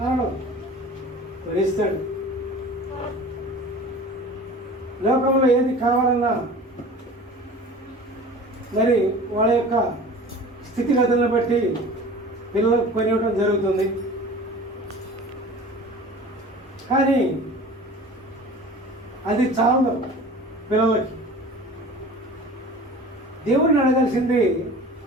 కొనిస్తాడు. లోకంలో ఏది కావాలన్నా మరి వాళ్ళ యొక్క స్థితిగతులను బట్టి పిల్లలకు కొనివ్వడం జరుగుతుంది. కానీ అది చాలదు పిల్లలకి. దేవుడిని అడగాల్సింది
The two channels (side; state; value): both; normal; correlation 0.41